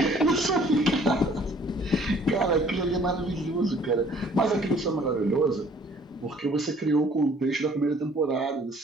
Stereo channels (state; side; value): normal; both; correlation 0.56